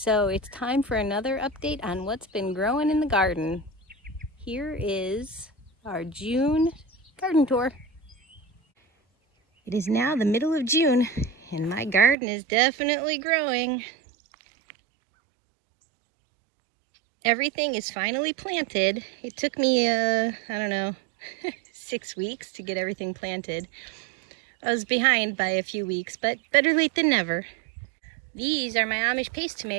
it's time for another update on what's been growing in the garden. Here is our June garden tour. It is now the middle of June, and my garden is definitely growing. Everything is finally planted. It took me, I don't know, 6 weeks to get everything planted. I was behind by a few weeks, but better late than never. These are my Amish paste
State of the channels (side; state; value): left; drops out; at 12.2 s